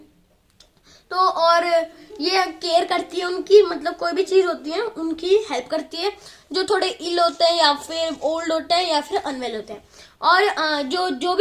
तो और ये केयर करती है उनकी, मतलब कोई भी चीज होती है उनकी हेल्प करती है, जो थोड़े इल होते हैं, या फिर ओल्ड होते हैं, या फिर अनवेल होते हैं। और जो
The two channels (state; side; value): identical; both; correlation 1.00